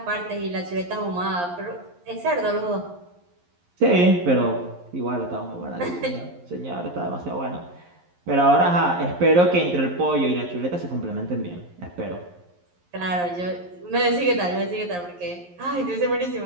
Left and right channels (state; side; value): late; left; 11 ms